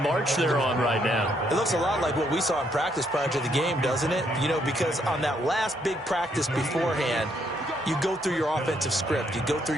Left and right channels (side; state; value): both; normal; correlation 0.72